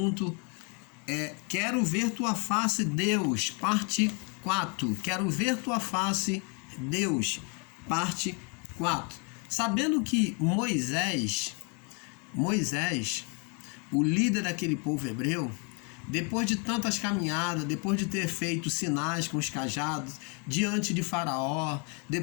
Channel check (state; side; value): quieter; right; 35.5 dB